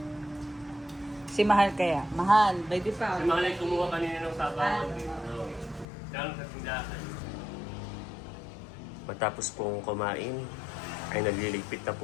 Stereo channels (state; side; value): drops out; right; at 5.9 s